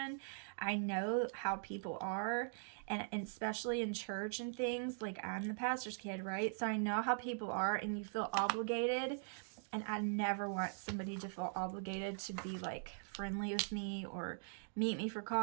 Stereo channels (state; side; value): silent; left; digital silence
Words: I know how people are. And especially in church and things, like I'm the pastor's kid, right? So I know how people are, and you feel obligated. And I never want somebody to feel obligated to be like friendly with me or meet me for